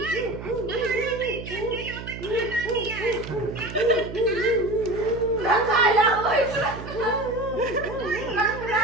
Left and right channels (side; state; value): right; noise; hum, 10 dB below the sound